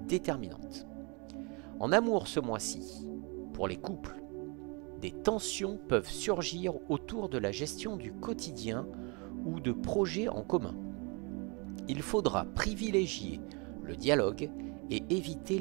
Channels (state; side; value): quieter; left; 31.3 dB